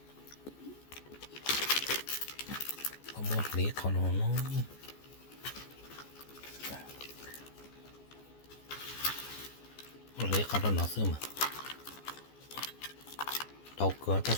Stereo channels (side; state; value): right; late; 14 ms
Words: có một lý còn nó lấy cả nó xưa mà đau cửa ta